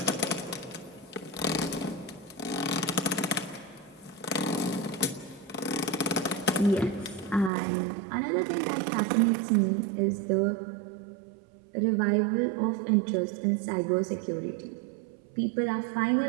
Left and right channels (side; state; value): left; drops out; at 7.5 s